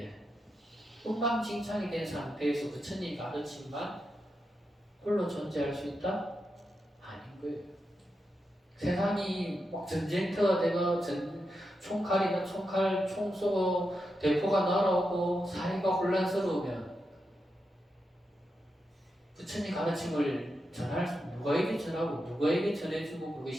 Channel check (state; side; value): normal; both; correlation 0.87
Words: 엉망진창이 된 상태에서 부처님 가르침만 홀로 존재할 수 있다? 아닌 거예요. 세상이 막 전쟁터가 되고 총칼이나 총 쏘고 대포가 날아오고 사회가 혼란스러우면 부처님 가르침을 누가에게 전하고 누가에게 전해주고